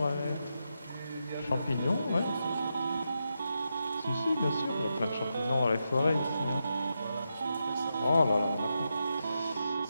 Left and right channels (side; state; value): both; inverted; correlation -0.86